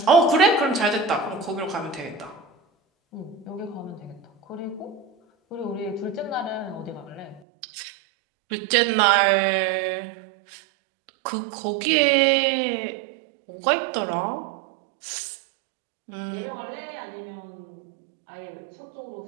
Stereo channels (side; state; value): left; drops out; at 7.4 s